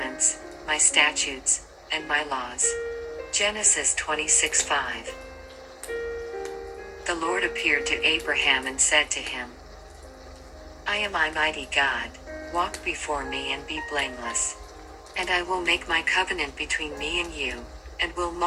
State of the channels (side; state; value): both; identical; correlation 1.00